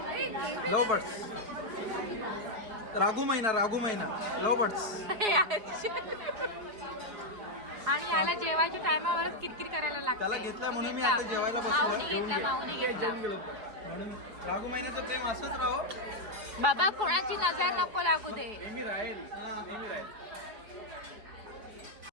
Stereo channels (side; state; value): left; late; 4.8 ms